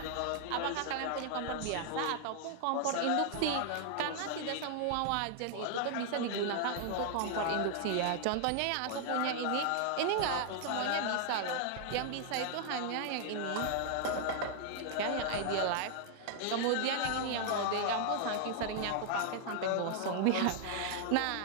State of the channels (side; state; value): both; different; correlation 0.00